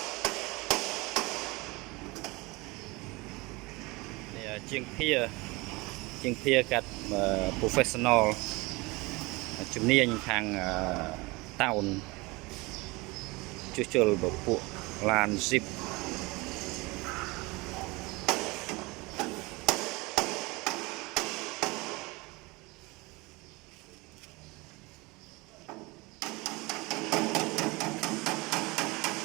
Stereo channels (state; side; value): quieter; left; 24.0 dB